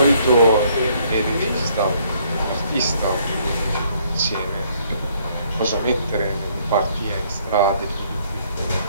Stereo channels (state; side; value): inverted; both; correlation -0.66